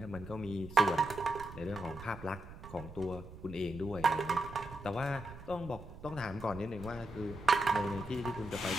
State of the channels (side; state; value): right; noise; rumble, 14 dB below the sound